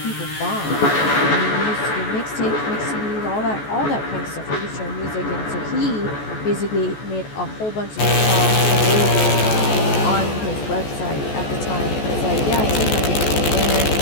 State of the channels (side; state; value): right; late; 14 ms